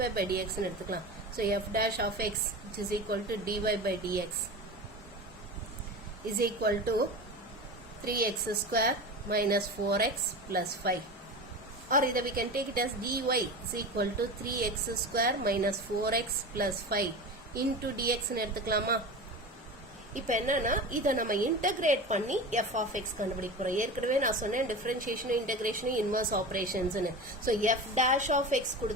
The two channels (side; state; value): both; normal; correlation 0.29